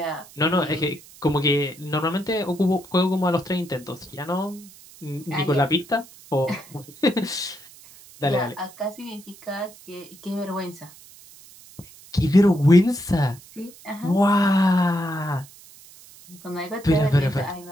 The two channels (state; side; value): noise; right; hiss, 22 dB below the sound